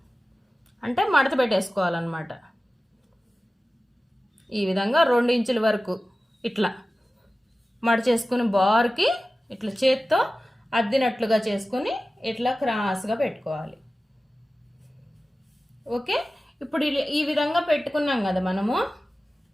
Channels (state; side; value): normal; both; correlation 0.95